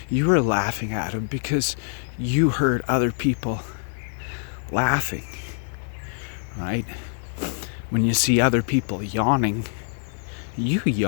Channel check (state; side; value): silent; right; digital silence